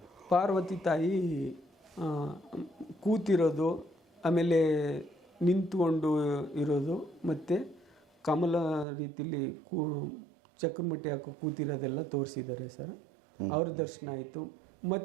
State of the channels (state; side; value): drops out; left; at 8.8 s